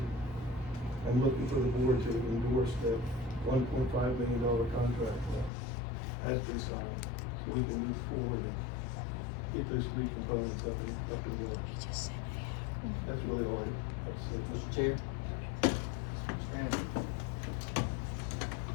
am looking for the board to endorse that $1.5 million contract that has been signed, so we can move forward and get those 3 components up and going. That's really all I have to say. Mr. Chair?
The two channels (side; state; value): right; drops out; at 5.5 s